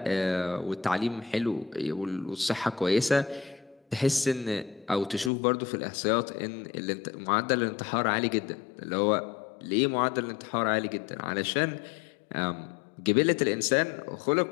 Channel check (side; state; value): right; drops out; at 5.3 s